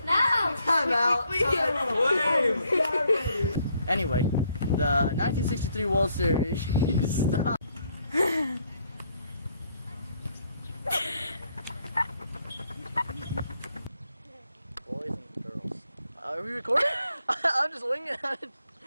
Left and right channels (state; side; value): inverted; both; correlation -0.70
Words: No. Time out. Anyway, the 1963 World Series. Stop. Boys and girls. Are we recording? I'm just winging it. As